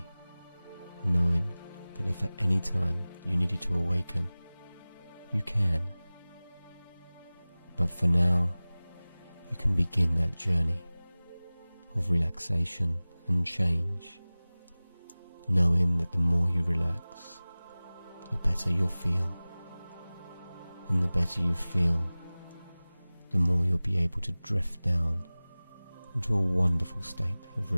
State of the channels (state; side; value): inverted; both; correlation -0.99